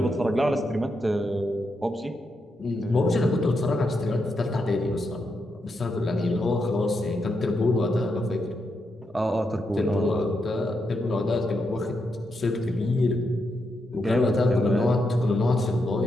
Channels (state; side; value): normal; both; correlation 0.83